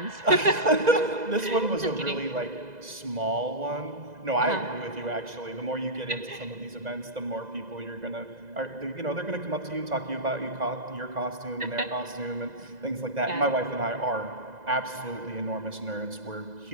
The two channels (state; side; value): late; left; 2.0 ms